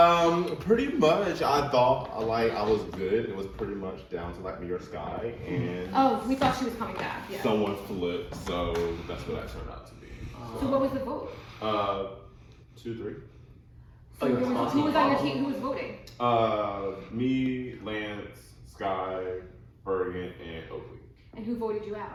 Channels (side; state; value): both; identical; correlation 1.00